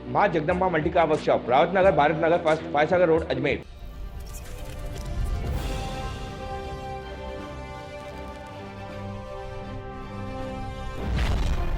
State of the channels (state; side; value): identical; both; correlation 1.00